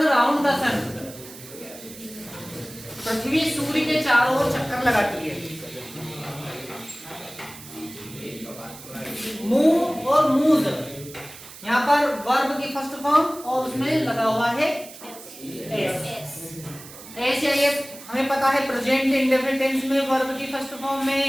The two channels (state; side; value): noise; right; hiss, 16 dB below the sound